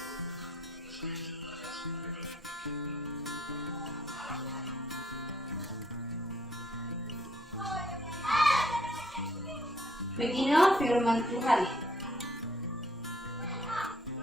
Beginilah firman Tuhan.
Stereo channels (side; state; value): both; normal; correlation 0.66